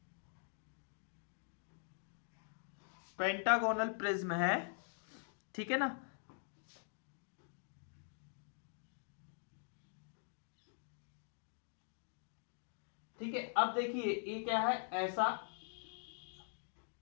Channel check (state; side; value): silent; right; digital silence